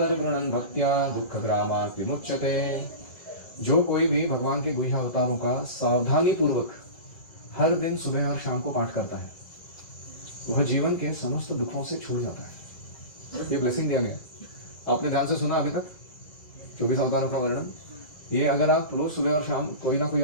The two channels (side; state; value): right; late; 2.0 ms